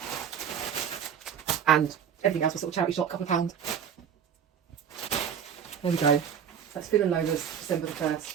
everything else was sort of charity shop, couple of pounds. There we go. That's Finn and Lola's December the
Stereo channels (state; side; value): quieter; left; 8.2 dB